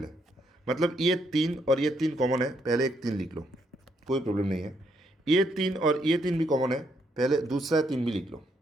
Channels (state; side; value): normal; both; correlation 0.74